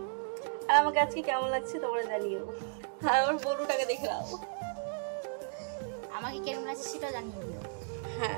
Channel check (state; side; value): silent; left; digital silence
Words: আর আমাকে আজকে কেমন লাগছে তোমরা জানিও। আর আমার বন্ধুটাকে দেখে নাও, আমাকে কেমন লাগছে সেটা জানিয়ে দিও। হ্যাঁ